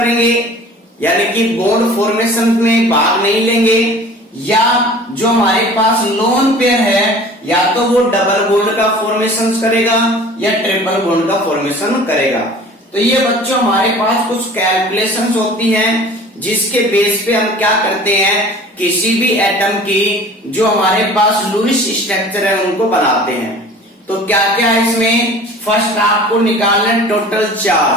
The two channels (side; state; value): both; normal; correlation 0.44